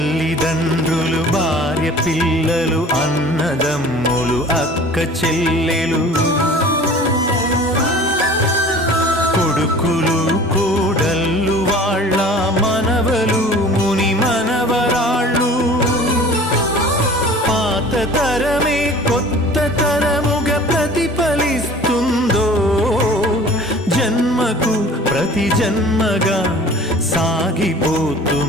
భార్య పిల్లలు, అన్నదమ్ములు, అక్క చెల్లెలు. కొడుకులు కోడళ్ళు వాళ్ళ మనవలు ముని మనవరాళ్ళు పాత తరమే కొత్త తరముగా ప్రతిఫలిస్తుందో జన్మకు ప్రతి జన్మగా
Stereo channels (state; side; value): normal; both; correlation 0.45